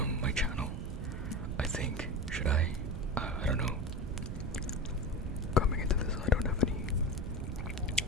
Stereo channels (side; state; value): right; noise; rumble, 4 dB below the sound